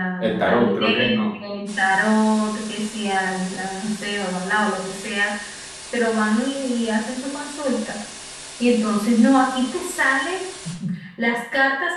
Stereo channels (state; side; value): identical; both; correlation 1.00